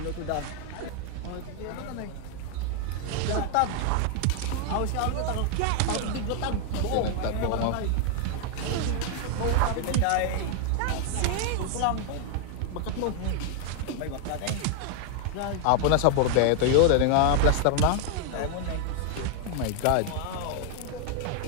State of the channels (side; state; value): both; different; correlation 0.00